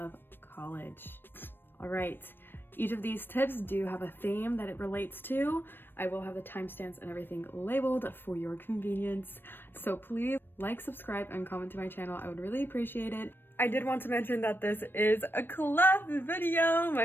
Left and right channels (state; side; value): late; right; 0.097 ms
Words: college. Alright, each of these tips do have a theme that it relates to. I will have the timestamps and everything labeled for your convenience. So please like, subscribe, and comment to my channel. I would really appreciate it. I did want to mention that this is a collab video,